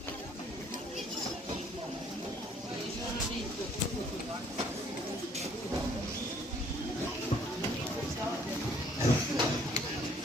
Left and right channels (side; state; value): both; normal; correlation 0.61